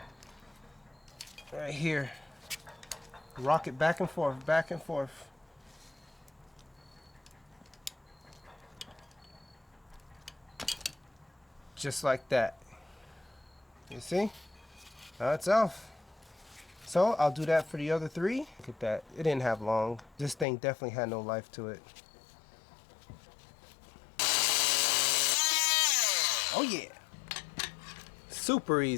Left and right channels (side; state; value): right; drops out; at 20.5 s